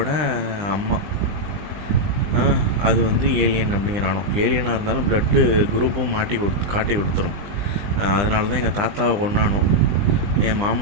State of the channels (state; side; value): late; left; 20 ms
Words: அம்மா. அது வந்து ஏலியன் அப்படிங்கிறானோ. ஏலியனாக இருந்தாலும் ப்ளட்டு குரூப்பும் காட்டி கொடுத்துரும். அதனால தான் எங்கள் தாத்தாவை கொண்டானோ, என்